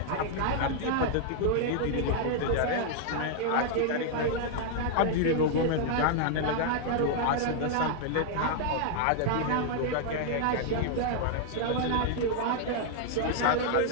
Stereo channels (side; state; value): both; different; correlation 0.00